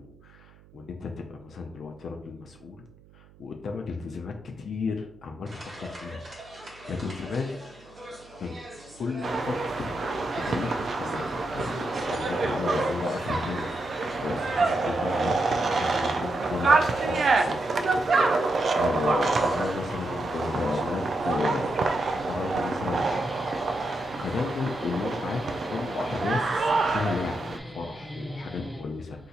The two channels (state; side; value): noise; right; hum, 25 dB below the sound